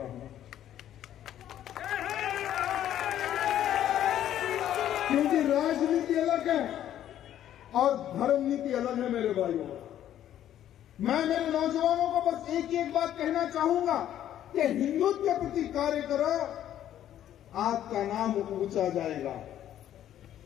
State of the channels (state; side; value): quieter; right; 11.4 dB